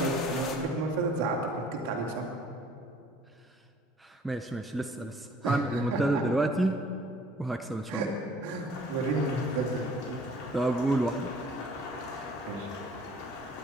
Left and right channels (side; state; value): both; normal; correlation 0.54